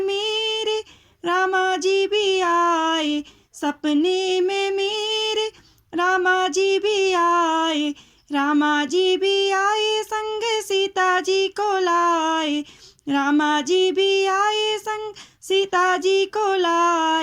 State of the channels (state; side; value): identical; both; correlation 1.00